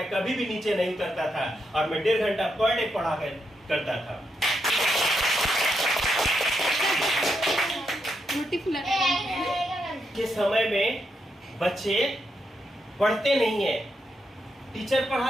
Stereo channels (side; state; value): both; normal; correlation 0.82